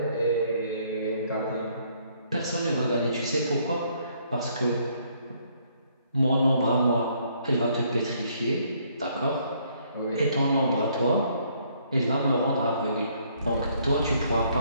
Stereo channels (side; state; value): both; inverted; correlation -0.67